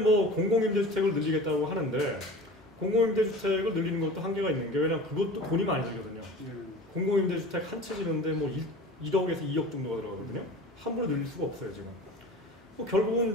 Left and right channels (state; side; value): normal; both; correlation 0.38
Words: 공공임대주택을 늘리겠다고 하는데 공공임대주택을 늘리는 것도 한계가 있는 게, 왜냐 그것도 돈이 많이 들거든요. 공공임대주택 한 채 지는데 뭐 1억에서 2억 정도가 들어가거든요. 함부로 늘릴 수가 없어요 지금. 뭐 결국은